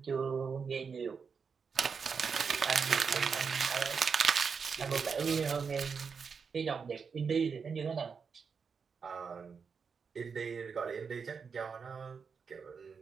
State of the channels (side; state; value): left; quieter; 5.8 dB